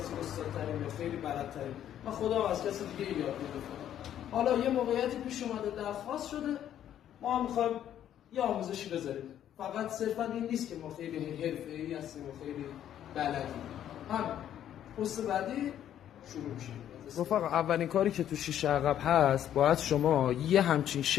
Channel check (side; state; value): right; quieter; 10.7 dB